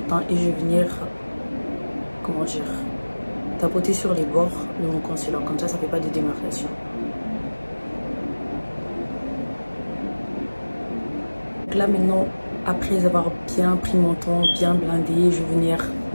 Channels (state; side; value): inverted; both; correlation -1.00